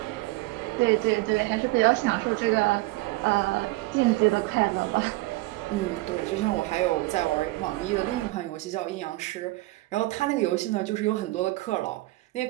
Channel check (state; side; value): quieter; left; 20.5 dB